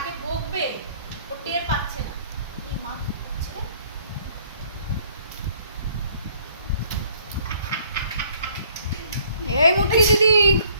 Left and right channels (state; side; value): inverted; both; correlation -0.60